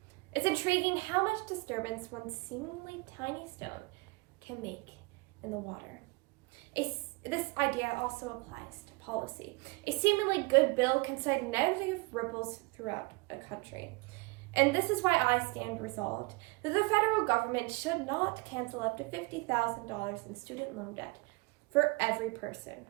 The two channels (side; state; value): left; quieter; 26.8 dB